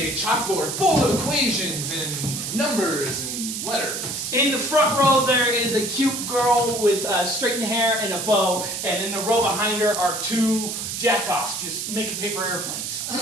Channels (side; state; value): right; noise; hiss, 4 dB below the sound